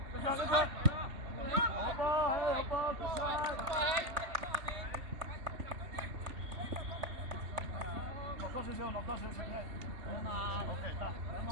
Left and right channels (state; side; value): late; left; 3.1 ms